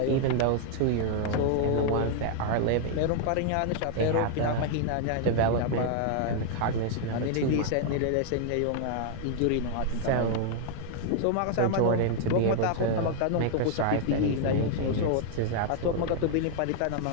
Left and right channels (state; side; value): different; both; correlation 0.00